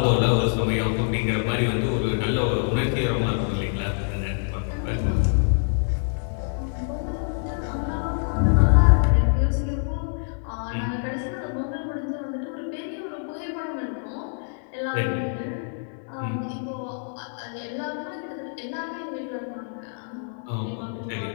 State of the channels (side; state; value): right; silent; digital silence